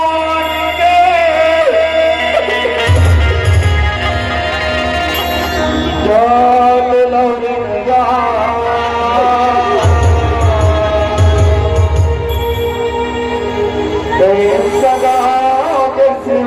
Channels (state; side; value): identical; both; correlation 1.00